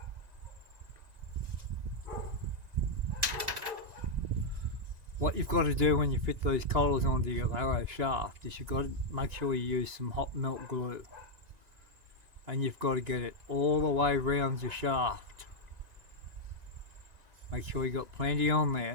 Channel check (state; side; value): late; left; 1.9 ms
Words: What you've got to do when you fit these collars onto your arrow shaft is you've got to make sure you use some hot melt glue. And you've got to get it all the way around your shaft. Make sure you got plenty on